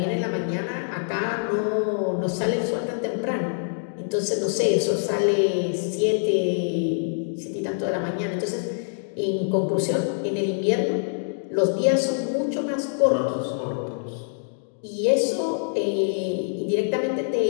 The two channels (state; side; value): silent; right; digital silence